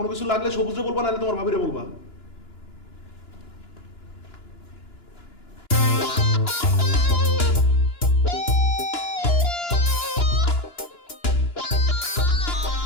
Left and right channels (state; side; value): late; right; 2.9 ms